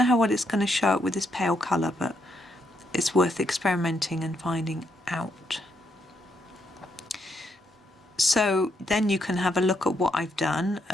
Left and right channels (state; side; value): normal; both; correlation 0.77